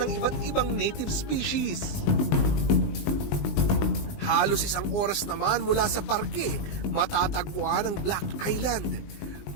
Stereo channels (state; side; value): late; right; 20 ms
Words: iba't ibang native species. Halos 1 oras naman mula sa parke, matatagpuan ang Black Island.